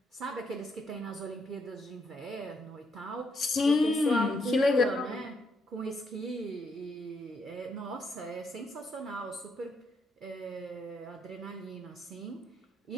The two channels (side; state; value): both; normal; correlation 0.76